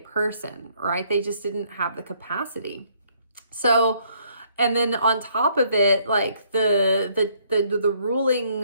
right? They just didn't have the capacity. So, and then on top of it, the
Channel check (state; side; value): inverted; both; correlation -0.66